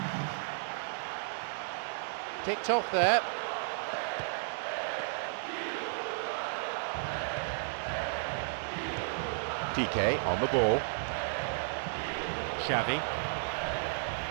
Ticked off there. Piqué on the ball. Xavi.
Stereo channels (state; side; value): silent; left; digital silence